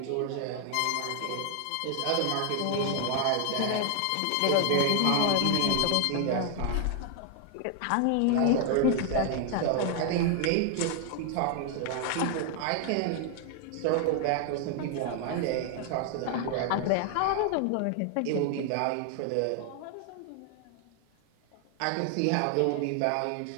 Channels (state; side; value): different; both; correlation 0.00